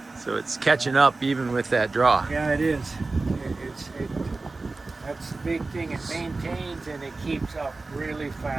So it's catching up even with that draw. Yeah, it is. That's the big thing. It maintains and it keeps up really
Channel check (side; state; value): left; quieter; 3.5 dB